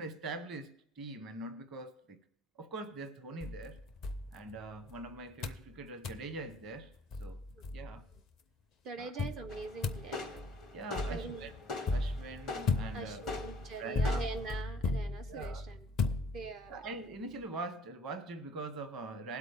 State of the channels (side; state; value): both; normal; correlation 0.56